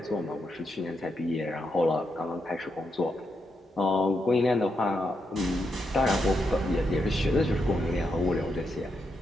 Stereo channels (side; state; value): both; normal; correlation 0.83